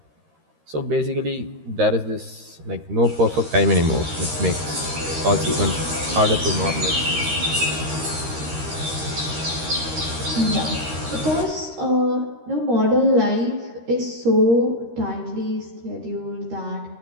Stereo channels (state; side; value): late; left; 13 ms